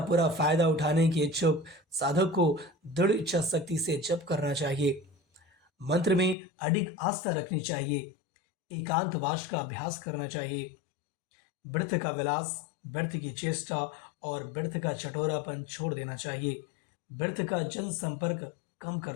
पूरा फायदा उठाने के इच्छुक साधक को दृढ़ इच्छा शक्ति से जप करना चाहिए। मंत्र में अडिग आस्था रखनी चाहिए। एकांतवास का अभ्यास करना चाहिए। व्यर्थ का विलास, व्यर्थ की चेष्टा और व्यर्थ का चटोरापन छोड़ देना चाहिए। व्यर्थ का जन संपर्क कम कर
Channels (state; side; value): drops out; right; at 6.4 s